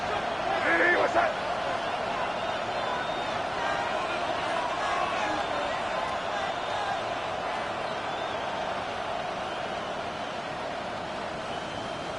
Hey, what's that?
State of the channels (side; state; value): both; identical; correlation 1.00